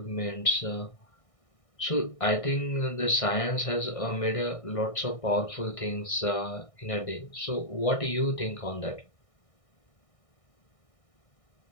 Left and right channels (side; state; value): right; late; 1.6 ms